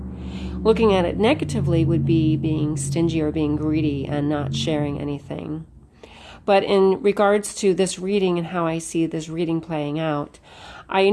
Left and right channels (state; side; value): identical; both; correlation 1.00